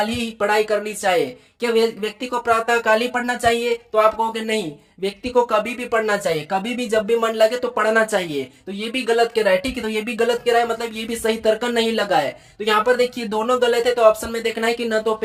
ही पढ़ाई करनी चाहिए। क्या व्यक्ति को प्रातः काल ही पढ़ना चाहिए, तो आप कहोगे नहीं, व्यक्ति को कभी भी पढ़ना चाहिए, कभी भी जब भी मन लगे तो पढ़ना चाहिए। तो ये भी गलत कह रहा है, ठीक है, तो ये भी गलत कह रहा है, मतलब ये भी सही तर्क नहीं लगा है। तो यहाँ पर देखिए दोनों गलत है, तो ऑप्शन में देखना है कि न तो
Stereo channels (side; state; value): both; identical; correlation 1.00